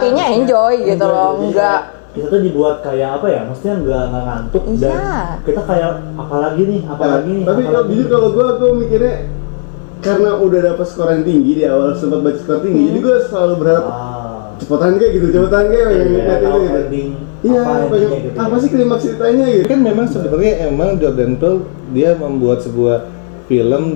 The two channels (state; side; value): silent; right; digital silence